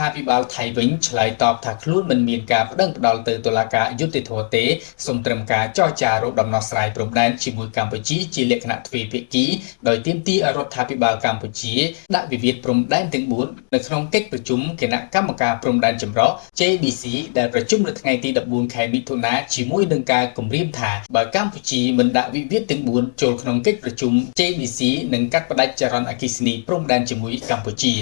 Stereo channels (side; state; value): right; silent; 64 dB below the other